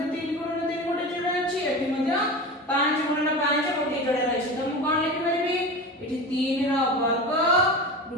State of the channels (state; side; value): normal; both; correlation 0.28